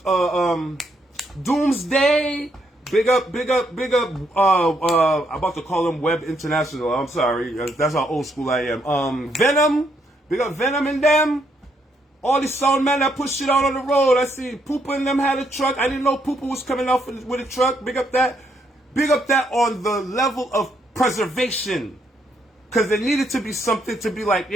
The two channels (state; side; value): normal; both; correlation 0.74